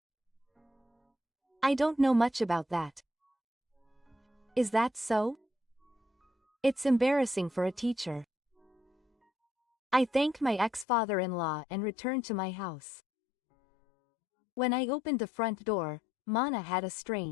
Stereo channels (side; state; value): right; drops out; at 10.9 s